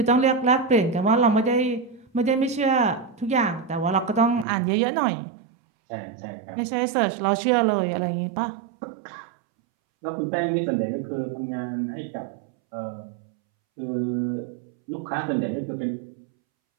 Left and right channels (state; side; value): drops out; left; at 4.5 s